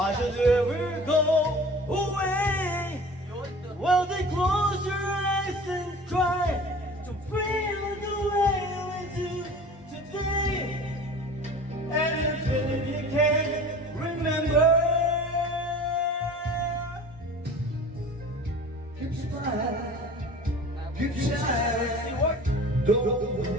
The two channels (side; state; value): both; normal; correlation 0.41